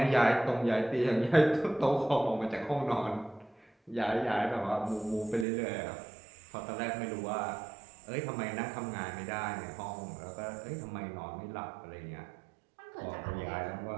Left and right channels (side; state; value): left; drops out; at 5.5 s